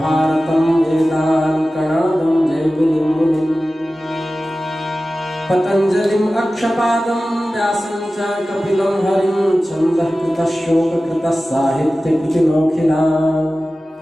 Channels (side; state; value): both; normal; correlation 0.95